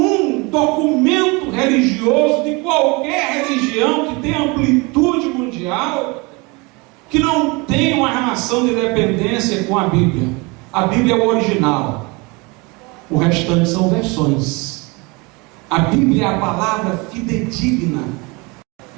documento religioso de qualquer religião que tenha amplitude mundial que não tenha uma relação de dependência com a Bíblia. A Bíblia é o original, o restante são versões. A Bíblia é a palavra fidedigna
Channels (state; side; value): quieter; left; 27.1 dB